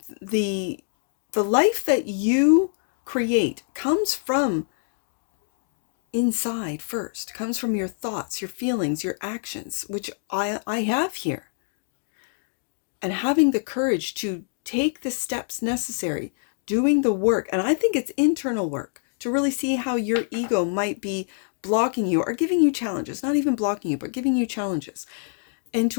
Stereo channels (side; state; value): right; silent; digital silence